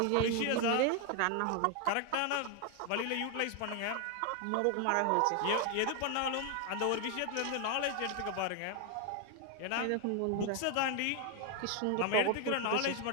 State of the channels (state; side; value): different; both; correlation 0.01